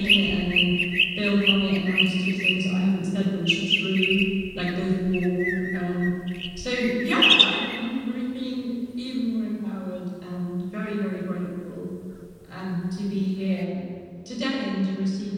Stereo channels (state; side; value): identical; both; correlation 1.00